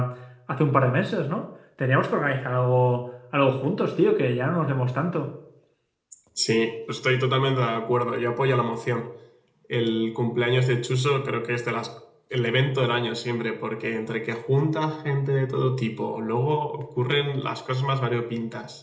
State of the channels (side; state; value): both; identical; correlation 1.00